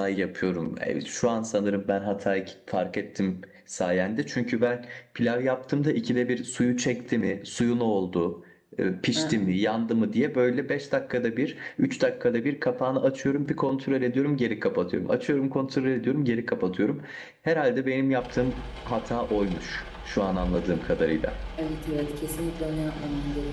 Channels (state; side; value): identical; both; correlation 1.00